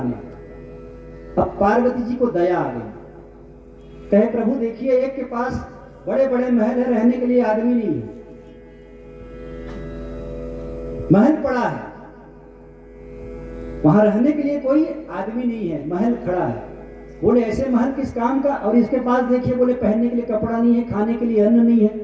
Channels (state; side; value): identical; both; correlation 1.00